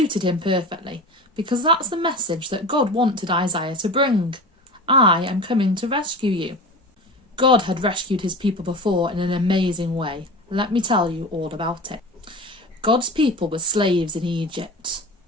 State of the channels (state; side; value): normal; both; correlation 0.32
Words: him perfectly, because that's the message that God wanted Isaiah to bring. I am coming to rescue you. God had rescued his people before in an amazing way. Let me tell you all about it. God's people were slaves in Egypt.